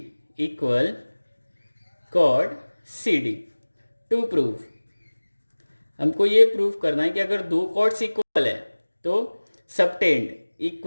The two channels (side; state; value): both; inverted; correlation -1.00